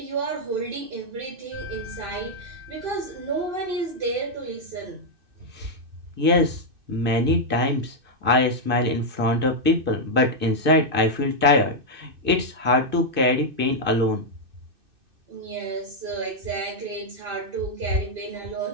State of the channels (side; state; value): left; late; 2.6 ms